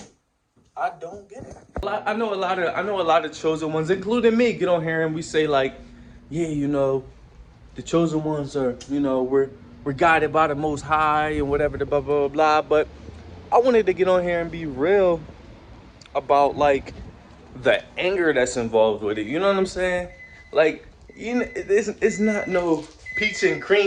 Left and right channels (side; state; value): both; identical; correlation 1.00